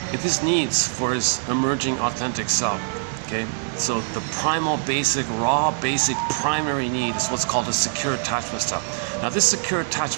It is needs for his emerging authentic self, okay? So the primal, basic, raw, basic, primary need is what's called a secure attachment style. Now this secure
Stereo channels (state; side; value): silent; left; 63 dB below the other